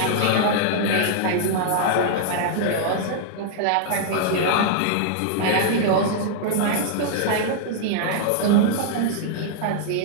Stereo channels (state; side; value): different; both; correlation -0.01